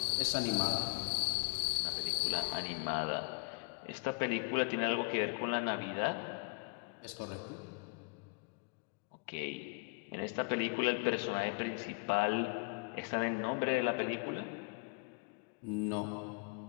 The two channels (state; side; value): quieter; right; 30.6 dB